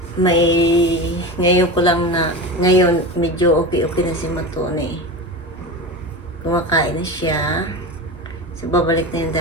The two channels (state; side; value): normal; both; correlation 0.26